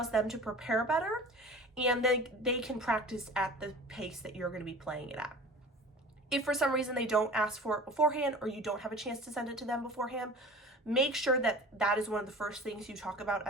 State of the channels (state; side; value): normal; both; correlation 0.40